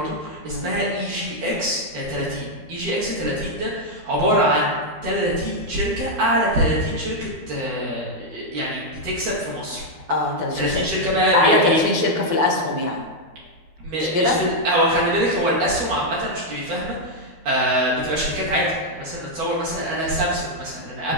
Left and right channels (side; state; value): left; late; 12 ms